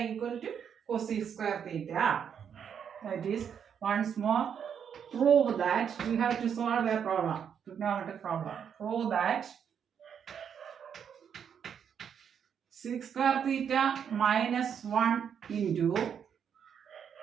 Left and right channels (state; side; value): quieter; left; 7.9 dB